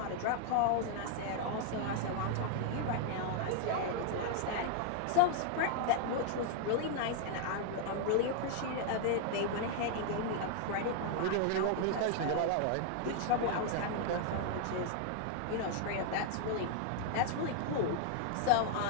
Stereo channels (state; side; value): different; both; correlation 0.00